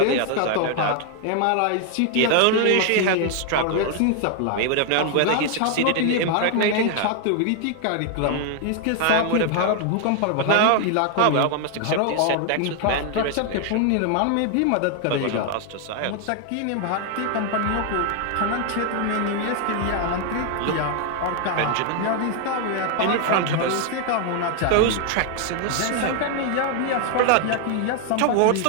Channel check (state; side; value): different; both; correlation 0.00